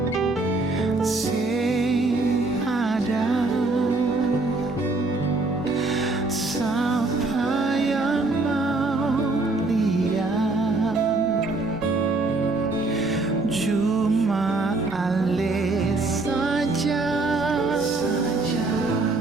Sing ada siapa yang mau lihat, cuma ale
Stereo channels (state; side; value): quieter; left; 3.3 dB